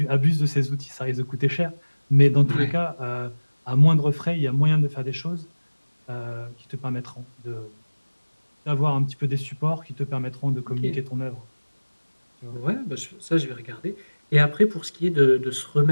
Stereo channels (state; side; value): inverted; both; correlation -1.00